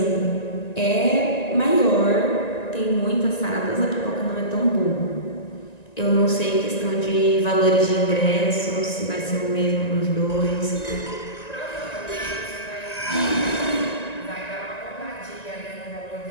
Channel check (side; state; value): right; late; 1.9 ms